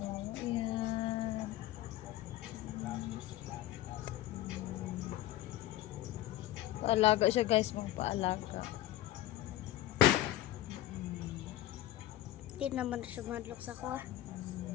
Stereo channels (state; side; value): quieter; right; 14.4 dB